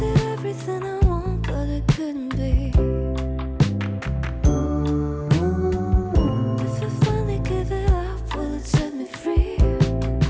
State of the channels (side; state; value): both; identical; correlation 1.00